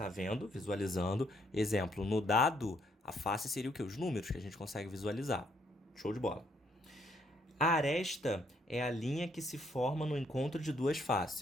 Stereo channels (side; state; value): both; normal; correlation 0.70